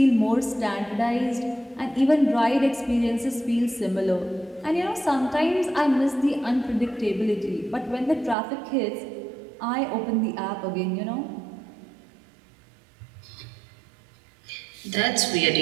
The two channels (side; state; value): left; drops out; at 8.3 s